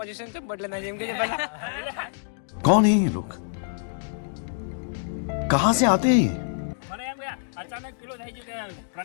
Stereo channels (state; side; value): silent; right; digital silence